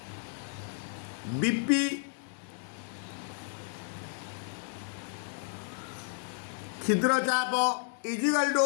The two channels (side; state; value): right; silent; digital silence